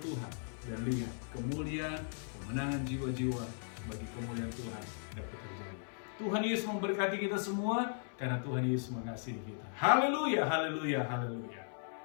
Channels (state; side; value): silent; right; 53 dB below the other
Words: dan lihat kemuliaan, kemenangan jiwa-jiwa bagi kemuliaan Tuhan dapat terjadi. Tuhan Yesus memberkati kita semua karena Tuhan Yesus mengasihi kita. Haleluya, haleluya, haleluya.